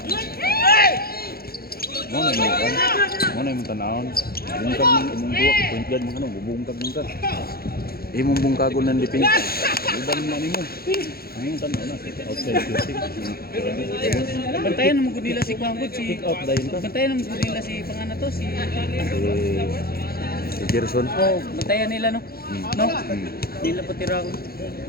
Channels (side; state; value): right; late; 0.44 ms